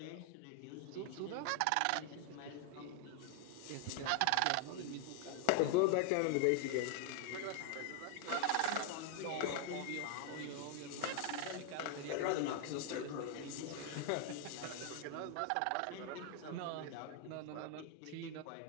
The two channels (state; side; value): different; both; correlation 0.01